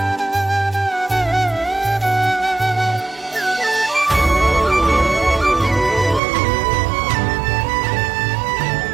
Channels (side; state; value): left; drops out; at 6.2 s